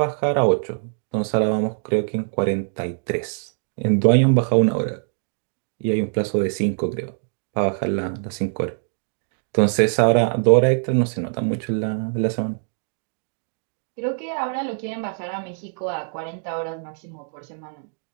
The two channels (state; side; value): silent; left; digital silence